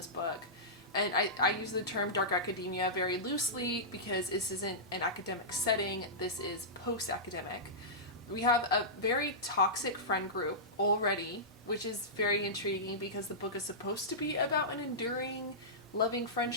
book. And I use the term dark academia very loosely because this isn't an academic setting, this is post-academic. We have a very toxic friend group already, which is very intriguing because the book is supposed to be about an enduring, loving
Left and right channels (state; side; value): normal; both; correlation -0.16